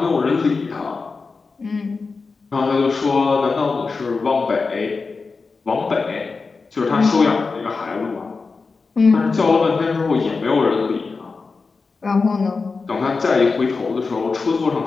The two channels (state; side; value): quieter; right; 4.4 dB